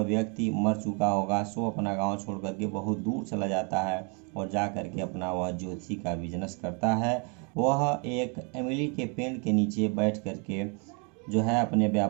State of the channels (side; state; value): left; quieter; 35.9 dB